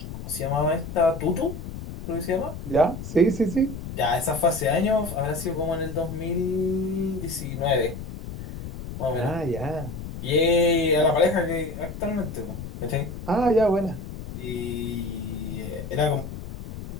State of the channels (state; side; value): noise; left; rumble, 9 dB below the sound